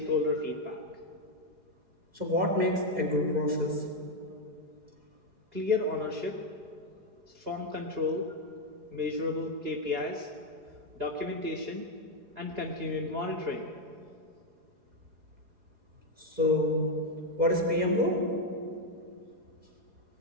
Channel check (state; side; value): late; left; 4.8 ms